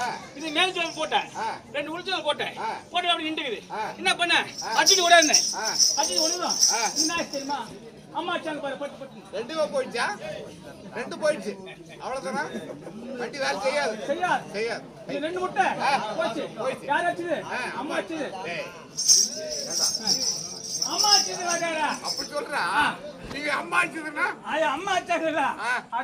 இது மேல் ஜோபி போட்டேன். 2 உளுச்சல் போட்டேன். போட்டு அப்படி நின்றுக்குது. என்ன பண்ண? அடிச்சு ஓடாது. அடிச்சு ஓடுதான். என்ன தெரியுமா? அம்மா சாங்க பாரு பட்டு பட்டு. 2 போயிடுச்சா? 2 போயிடுச்சு. அவ்வளவுதானா? வண்டி வேலை செய்யாது. செய்யாது. இது 2 முட்டை போச்சு. யார் அடிச்சது? அம்மா அடிச்சது. அம்மா அடிச்சது வாடா. அப்படி சொல்றா? நீங்க அம்மா அடிச்சதுன்னா? அம்மா அடிச்சதுல.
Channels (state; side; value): identical; both; correlation 1.00